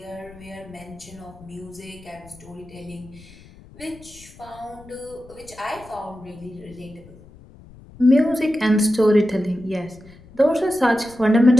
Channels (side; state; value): left; noise; rumble, 22 dB below the sound